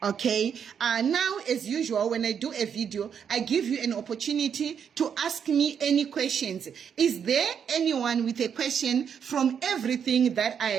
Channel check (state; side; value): quieter; left; 7.6 dB